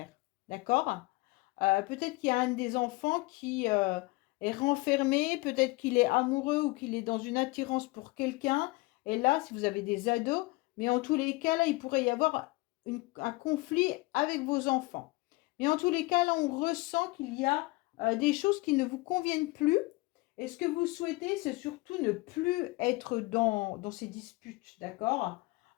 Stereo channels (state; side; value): quieter; right; 23.0 dB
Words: D'accord? Peut-être qu'il y a un des enfants qui est renfermé, peut-être qu'il est amoureux ou qu'il est dans une attirance pour quelqu'un. Et là, si vous avez des ados, mais en tous les cas, là, il pourrait y avoir un conflit avec vos enfants. Mais en tous les cas, là, on ressent qu'il y a des choses qui ne vous conviennent plus. Et ce que vous souhaitez, c'est surtout ne plus être dans ces disputes, d'accord?